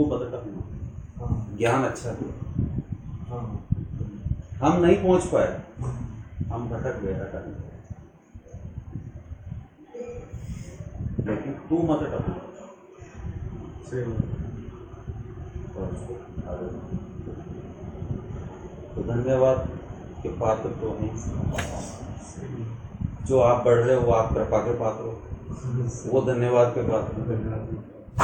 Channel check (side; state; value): both; identical; correlation 1.00